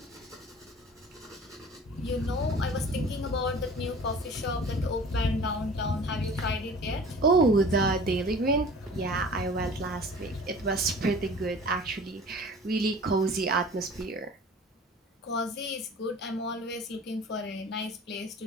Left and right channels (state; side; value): normal; both; correlation 0.44